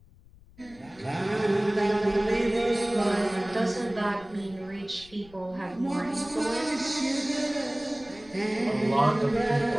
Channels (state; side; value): noise; left; rumble, 24 dB below the sound